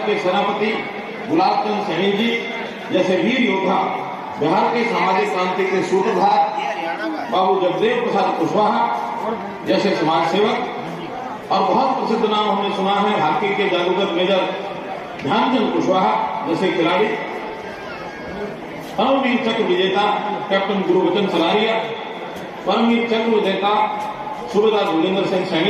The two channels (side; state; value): both; identical; correlation 1.00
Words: के सेनापति गुलाबचंद सैनी जी जैसे वीर योद्धा, बिहार के सामाजिक क्रांति के सूत्रधार बाबू जगदेव प्रसाद कुशवाहा जैसे समाज सेवक और बहुत प्रसिद्ध नाम हमने सुना है हॉकी के जादूगर मेजर ध्यानचंद कुशवाहा जैसे खिलाड़ी, परमवीर चक्र विजेता कैप्टन गुरुवचन सलारिया, परमवीर चक्र विजेता सूबेदार गुलेंद्र सिंह